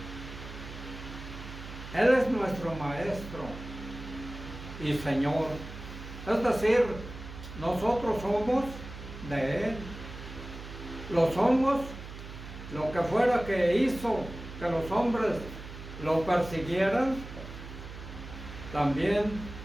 Él es nuestro maestro y Señor. Es decir, nosotros somos de Él. Lo somos, lo que fuera que hizo que los hombres lo persiguieran, también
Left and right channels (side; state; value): right; noise; hum, 12 dB below the sound